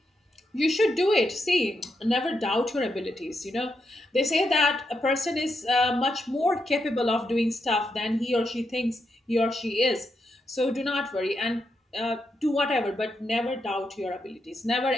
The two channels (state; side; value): normal; both; correlation 0.83